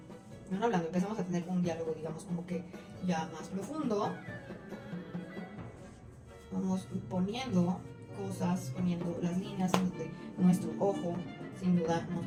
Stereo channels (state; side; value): identical; both; correlation 1.00